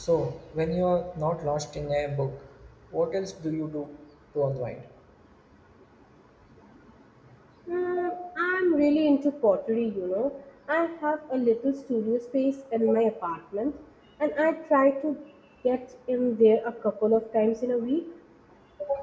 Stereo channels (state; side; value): identical; both; correlation 1.00